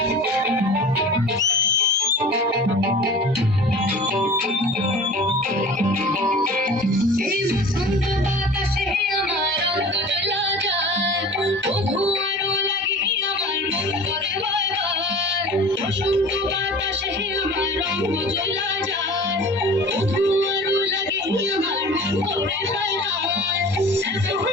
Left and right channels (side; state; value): both; normal; correlation 0.41